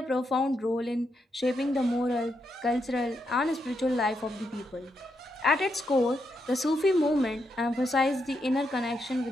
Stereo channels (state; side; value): normal; both; correlation 0.82